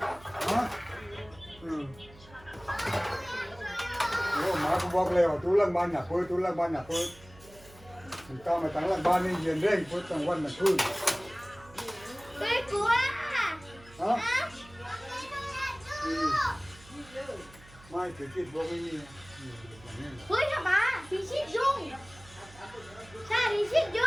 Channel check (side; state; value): right; noise; hum, 22 dB below the sound